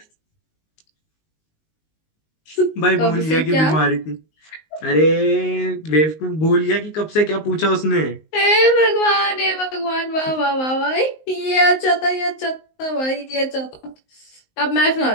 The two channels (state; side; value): late; right; 19 ms